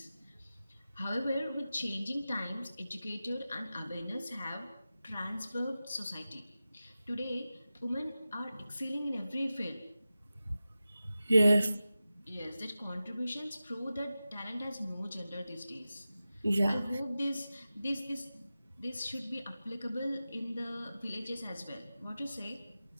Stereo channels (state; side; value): inverted; both; correlation -0.94